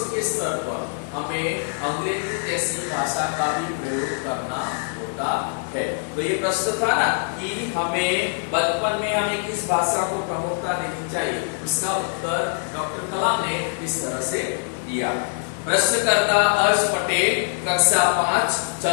के स्तर पर हमें अंग्रेजी जैसी भाषा का भी प्रयोग करना होता है। तो ये प्रश्न था ना कि हमें बचपन में हमें किस भाषा को प्रमुखता देनी चाहिए, उसका उत्तर डॉक्टर कलाम ने इस तरह से दिया। प्रश्नकर्ता हर्ष पटेल, कक्षा 5,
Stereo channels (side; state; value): right; silent; 58 dB below the other